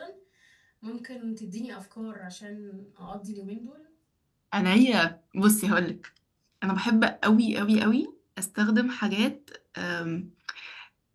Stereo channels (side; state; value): both; identical; correlation 1.00